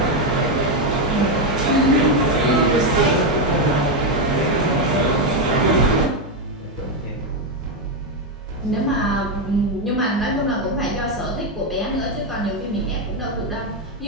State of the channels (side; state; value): both; normal; correlation 0.06